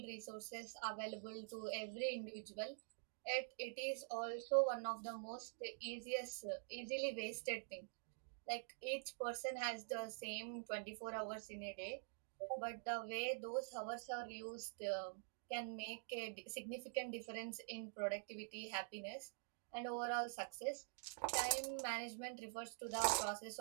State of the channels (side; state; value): left; silent; digital silence